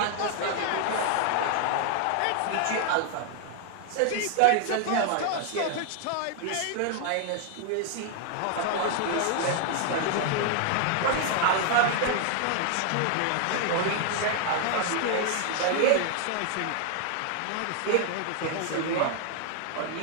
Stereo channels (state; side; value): different; both; correlation 0.00